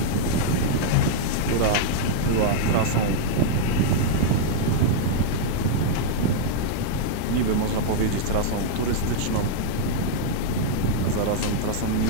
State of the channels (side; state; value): both; different; correlation -0.01